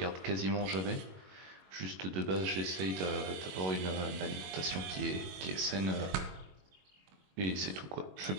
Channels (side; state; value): left; late; 21 ms